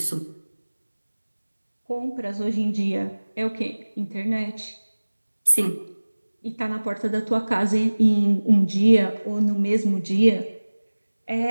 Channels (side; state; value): both; inverted; correlation -1.00